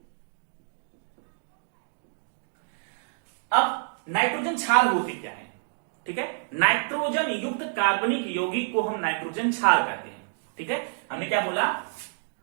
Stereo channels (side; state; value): left; silent; digital silence